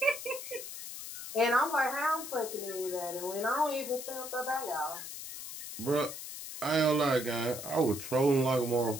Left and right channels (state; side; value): noise; left; hiss, 9 dB below the sound